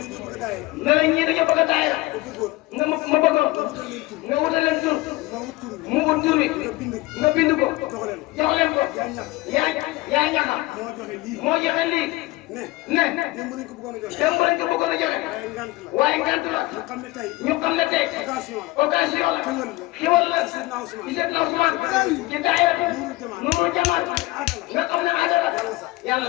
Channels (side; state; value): right; quieter; 20.1 dB